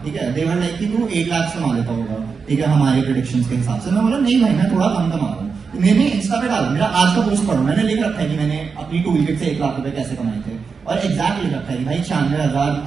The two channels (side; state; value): left; quieter; 5.3 dB